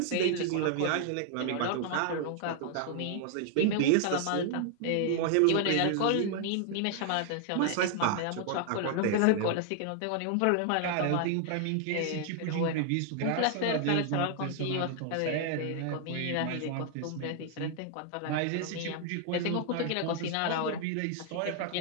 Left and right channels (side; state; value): both; different; correlation 0.00